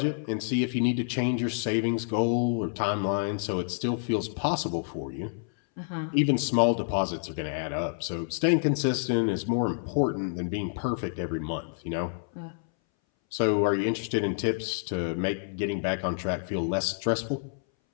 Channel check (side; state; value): right; silent; 59 dB below the other